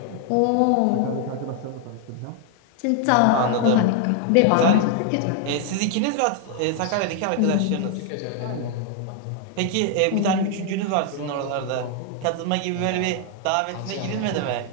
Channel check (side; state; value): both; different; correlation 0.00